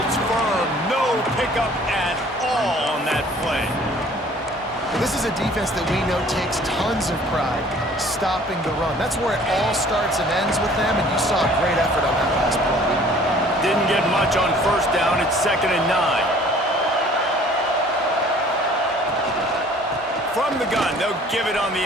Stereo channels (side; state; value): both; normal; correlation 0.53